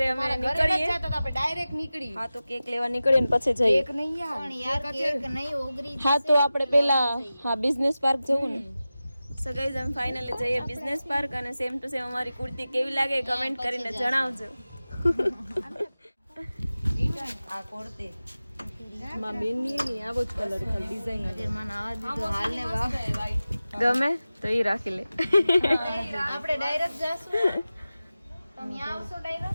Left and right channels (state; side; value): inverted; both; correlation -0.95